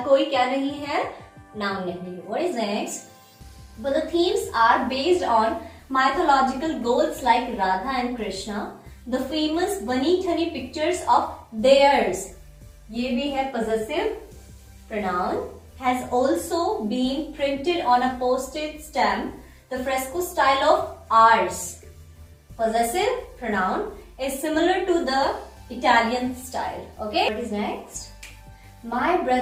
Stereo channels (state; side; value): identical; both; correlation 1.00